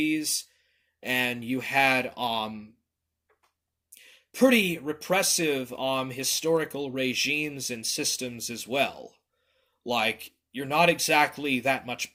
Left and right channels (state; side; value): identical; both; correlation 1.00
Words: and you had pretty repressive historical regimes and systems as well. Like, you're not exactly that